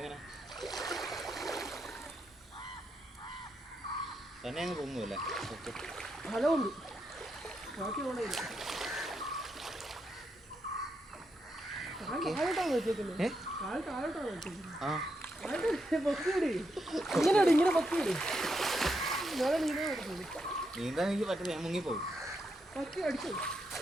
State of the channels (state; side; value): normal; both; correlation 0.82